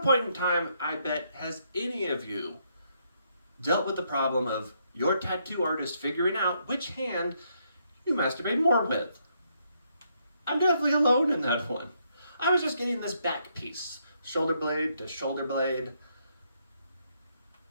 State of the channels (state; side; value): inverted; both; correlation -0.75